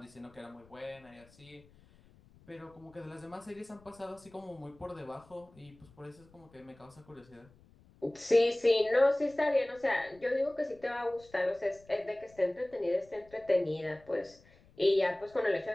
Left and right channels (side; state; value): left; noise; rumble, 27 dB below the sound